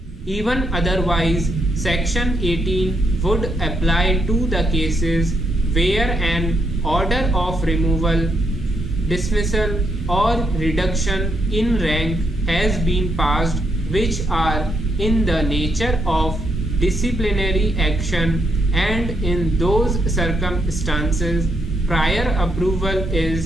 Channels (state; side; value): normal; both; correlation 0.78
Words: Even otherwise, Section 18 would apply to the cases where an order of removal, dismissal or reduction in rank has been passed, which are in the nature of disciplinary action, and in those circumstances prior approval